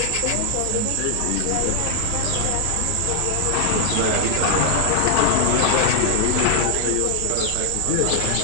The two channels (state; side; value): different; both; correlation 0.00